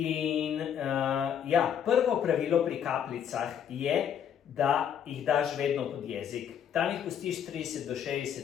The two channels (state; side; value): quieter; right; 8.7 dB